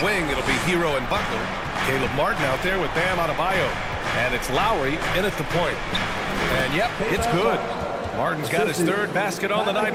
wing, it'll be Hero and Butler. Caleb Martin out there with Bam Adebayo. And it's Lowry in at the point. And yep, it's good. Martin's got his 3rd basket on the night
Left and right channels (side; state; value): both; identical; correlation 1.00